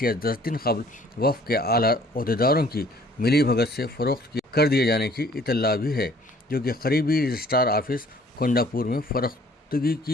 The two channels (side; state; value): both; normal; correlation 0.57